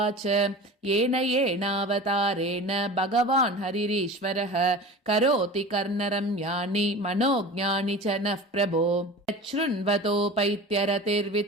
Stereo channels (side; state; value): both; normal; correlation 0.35